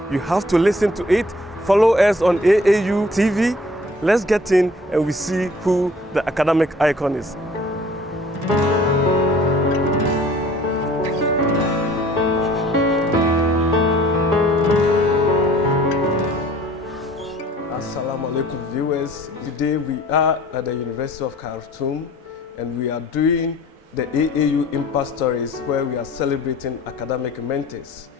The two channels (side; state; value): both; normal; correlation 0.52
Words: You have to listen to it. Follow us on AAU TV. Let's get in and we see who the academic icon is. Assalamu alaikum viewers. Today we are at the University of Khartoum and we are doing the AAU Impact Stories where we are celebrating academic mentors.